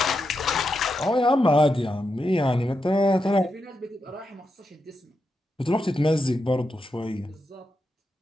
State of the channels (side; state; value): both; normal; correlation 0.86